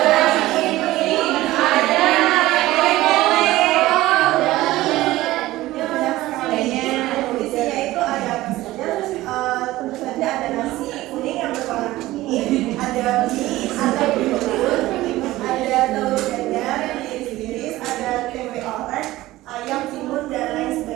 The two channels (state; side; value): quieter; left; 17.0 dB